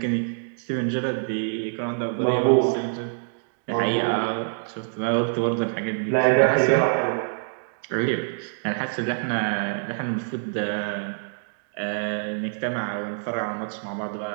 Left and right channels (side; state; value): left; silent; digital silence